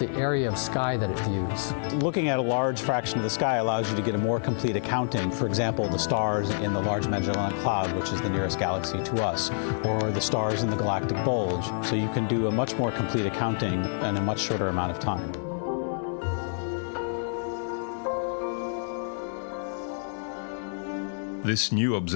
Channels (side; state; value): right; silent; digital silence